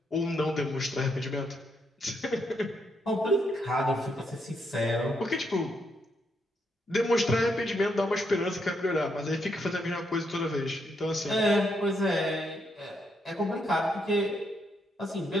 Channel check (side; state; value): both; normal; correlation 0.77